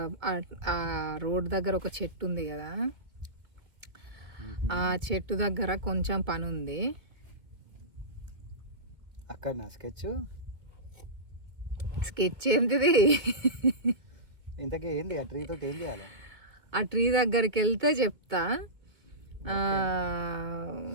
రోడ్ దగ్గర ఒక చెట్టు ఉంది కదా, ఆ చెట్టు దగ్గర కొంచెం పని ఉంది. అక్కడ నా స్కెచ్ ఏంటిది? ఇంతకీ ఏంది ఆ ట్రీ తోటి ఏం చేయాలి? ఆ ట్రీ దగ్గరికి వెళ్తే చెప్తా.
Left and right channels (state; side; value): late; left; 2.1 ms